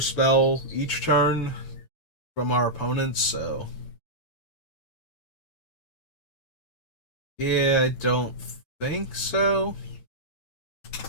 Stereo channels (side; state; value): right; late; 8.8 ms